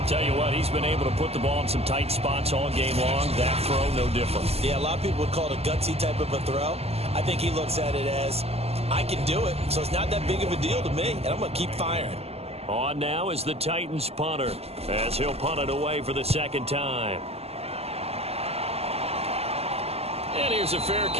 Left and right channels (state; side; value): late; left; 0.29 ms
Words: Tell you what, he's been able to put the ball in some tight spots all game long. That throw, no different. Yeah, a lot of people would call it a gutsy type of a throw. I think he looks at it as, I can do it, so it's not that big of a deal to me, and I'm going to keep firing. On now is the Titans punter, as he'll punt it away for the 2nd time. And here's a fair